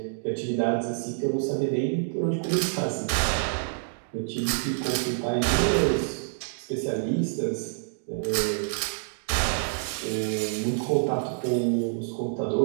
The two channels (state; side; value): silent; left; digital silence